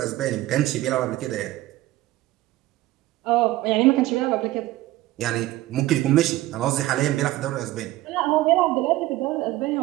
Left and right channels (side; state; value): left; quieter; 16.7 dB